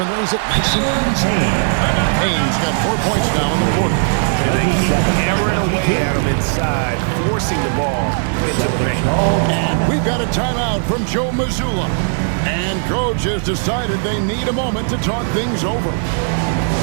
lays it nice and easy. Payne's got 4 points now in the quarter. And they keep hammering away at him inside, forcing the ball into the paint. And we've got a timeout from Joe Mazzulla. And coach has decided they need a moment to talk things over.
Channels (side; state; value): left; silent; digital silence